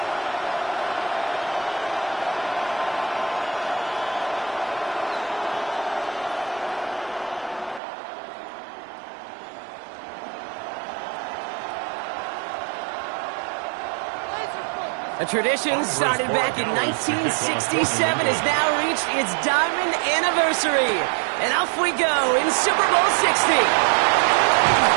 A tradition started back in 1967 has now reached its diamond anniversary. And off we go in Super Bowl 60.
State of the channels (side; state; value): left; drops out; at 7.8 s